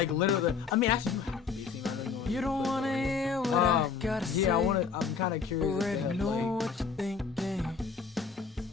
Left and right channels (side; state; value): right; quieter; 5.5 dB